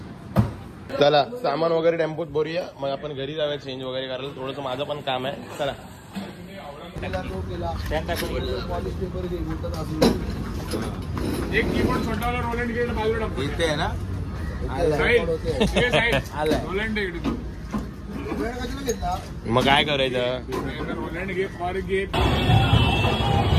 चला सामान वगैरे टेम्पोत भरूया मग आपण घरी जाऊया चेंज वगैरे करायला. थोडंसं माझं पण काम आहे. चला एक कीबोर्ड छोटा वाला रोलंड गेट बाजूला इथे आहे ना. रोलंड मग काय करायचं. रोलंड घे फॉर घे.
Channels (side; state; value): both; identical; correlation 1.00